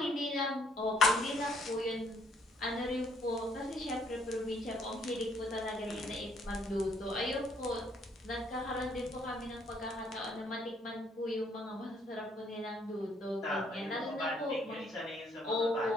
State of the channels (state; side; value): normal; both; correlation 0.67